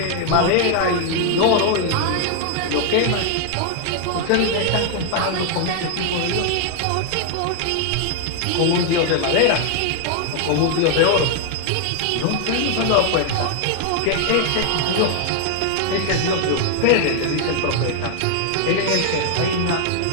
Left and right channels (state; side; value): different; both; correlation 0.00